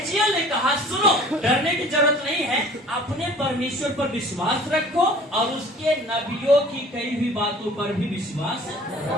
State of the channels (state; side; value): normal; both; correlation 0.48